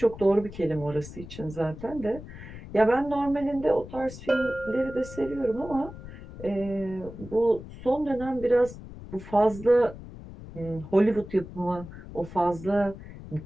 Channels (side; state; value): left; noise; rumble, 14 dB below the sound